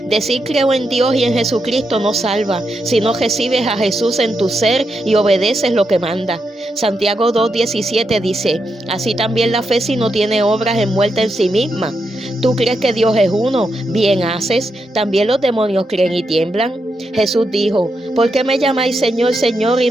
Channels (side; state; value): both; normal; correlation 0.84